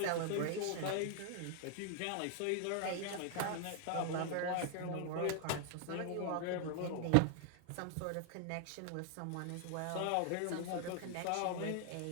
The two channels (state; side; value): different; both; correlation 0.00